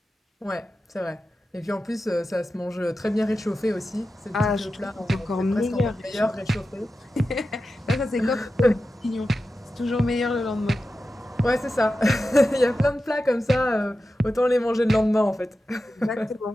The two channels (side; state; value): both; normal; correlation 0.92